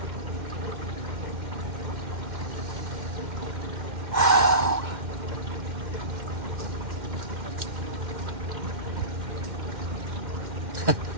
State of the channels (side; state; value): left; late; 2.1 ms